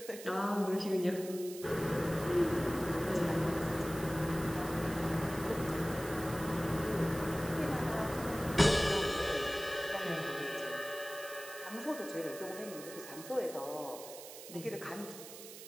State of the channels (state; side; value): noise; right; hiss, 13 dB below the sound